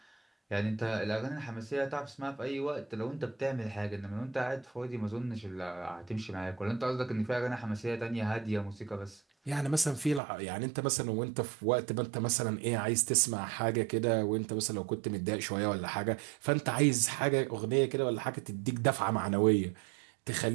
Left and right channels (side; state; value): left; drops out; at 10.2 s